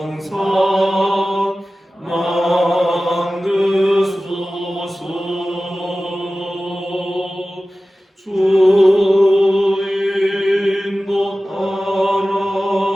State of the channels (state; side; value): normal; both; correlation 0.96